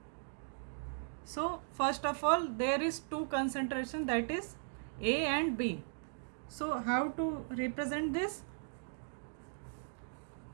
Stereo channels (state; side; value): silent; left; digital silence